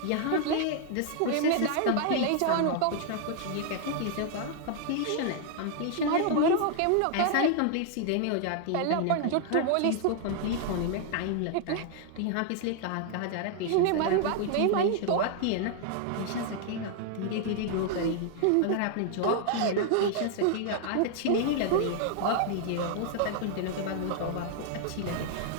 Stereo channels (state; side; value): different; both; correlation 0.00